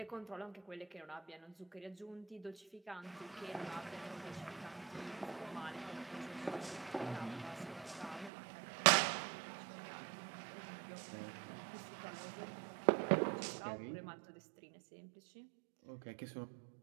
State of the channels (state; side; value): drops out; left; at 8.3 s